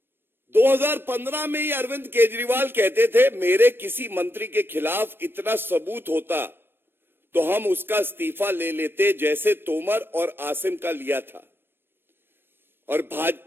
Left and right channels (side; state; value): left; late; 0.10 ms